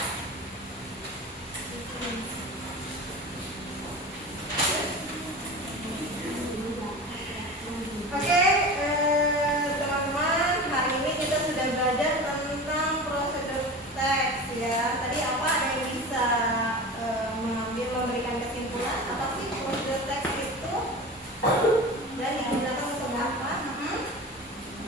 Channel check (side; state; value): both; normal; correlation 0.32